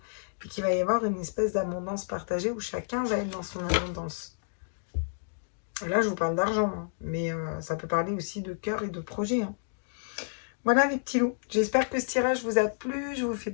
Et qu'il va y avoir une espèce d'abondance partagée où chacun va être dans son abondance. Là, je vous parle d'argent, hein, mais ça peut parler aussi de cœur et de projet. Hein. Voilà les petits loups. J'espère que ce tirage vous a plu. Je vous fais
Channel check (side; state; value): right; silent; digital silence